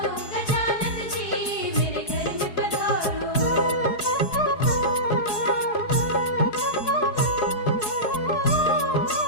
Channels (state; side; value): late; right; 4.7 ms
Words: गजानंद जी, मेरे घर में पधारो।